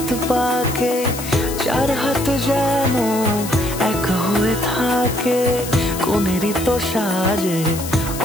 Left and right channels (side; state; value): left; noise; hiss, 10 dB below the sound